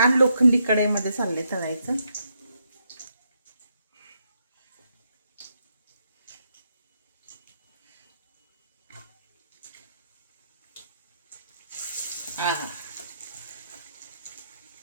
लोखंडी कढईमध्ये चालले तळायचं. हा,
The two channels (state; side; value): inverted; both; correlation -0.79